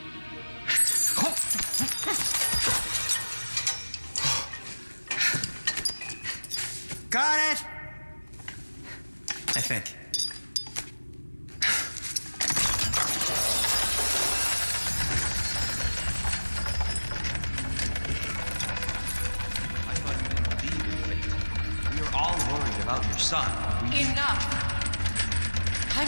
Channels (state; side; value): inverted; both; correlation -1.00